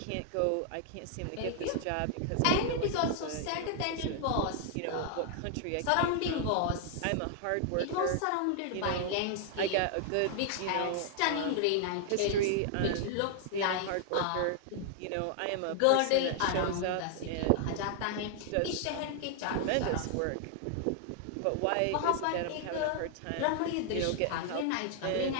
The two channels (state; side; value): different; both; correlation 0.00